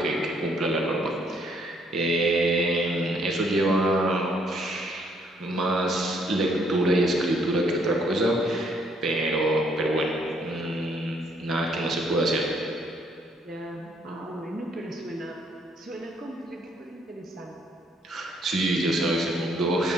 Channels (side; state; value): both; normal; correlation 0.68